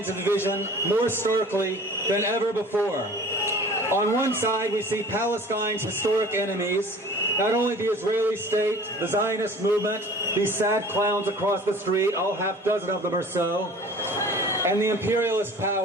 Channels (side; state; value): both; normal; correlation 0.45